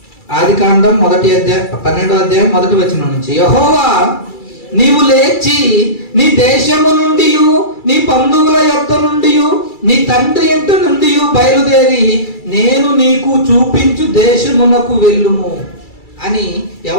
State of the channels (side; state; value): right; late; 2.3 ms